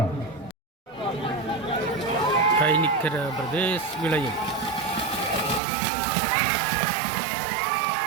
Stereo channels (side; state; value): left; drops out; at 5.6 s